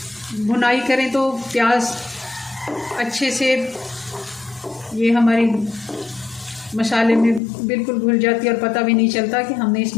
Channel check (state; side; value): drops out; right; at 7.4 s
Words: भुनाई करें तो प्याज अच्छे से ये हमारी मसाले में बिल्कुल घुल जाती है और पता भी नहीं चलता कि हमने